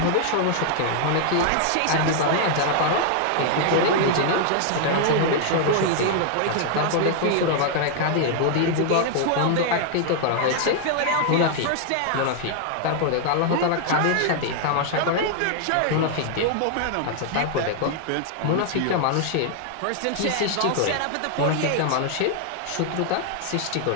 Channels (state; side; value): different; both; correlation 0.00